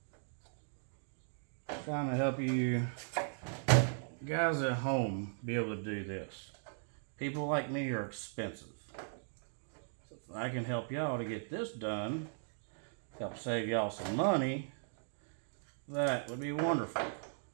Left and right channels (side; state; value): left; silent; digital silence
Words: Trying to help you guys at home be able to do this. People like me are expensive. So if I can help y'all to get this done, help save y'all some money, that would be wonderful.